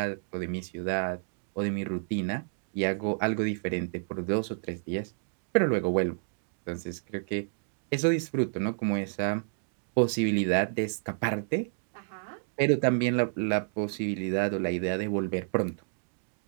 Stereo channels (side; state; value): left; silent; digital silence